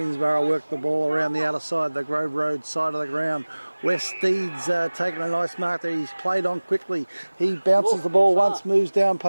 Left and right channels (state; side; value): inverted; both; correlation -1.00